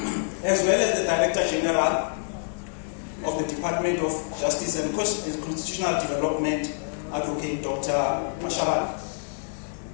as well as the Director General of the Department of Justice and Constitutional Development, Advocate Dr. Mphile.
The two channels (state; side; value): silent; right; digital silence